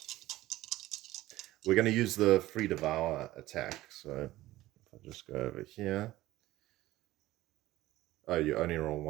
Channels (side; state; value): left; quieter; 16.6 dB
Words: We're going to use the free devour attack. So if I just go over here. Oh, you only roll